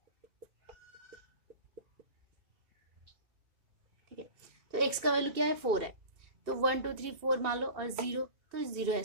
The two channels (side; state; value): left; late; 2.6 ms